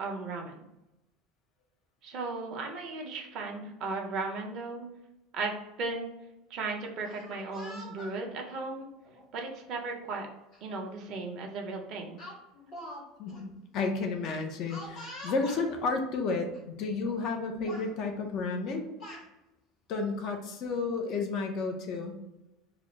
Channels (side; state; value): both; normal; correlation 0.32